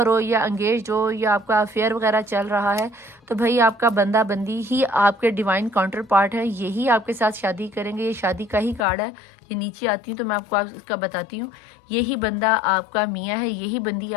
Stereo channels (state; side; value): drops out; right; at 8.8 s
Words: हो या एंगेज हो या आपका अफेयर वगैरह चल रहा है तो भाई आपका बंदा बंदी ही आपके डिवाइन काउंटर पार्ट है, यही आपके साथ शादी करेंगे। ये शादी का ही कार्ड है। ये नीचे आती हूँ तो मैं आपको इसका बताती हूँ। यही बंदा आपका मियाँ है, यही बंदी